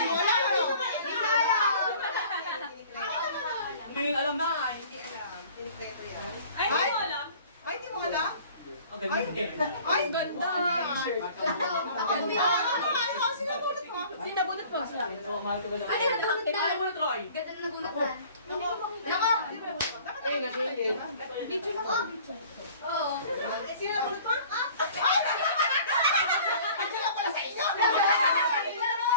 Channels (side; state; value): both; inverted; correlation -0.49